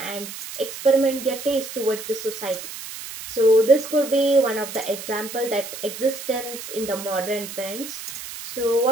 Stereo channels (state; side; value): noise; right; hiss, 10 dB below the sound